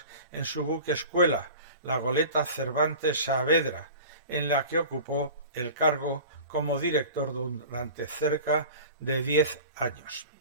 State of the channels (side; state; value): both; inverted; correlation -0.38